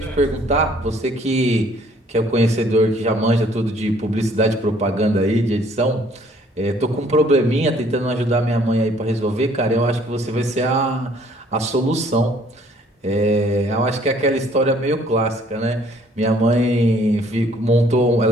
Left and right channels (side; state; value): both; normal; correlation 0.60